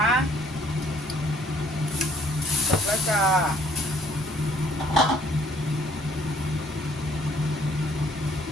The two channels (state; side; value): normal; both; correlation 0.62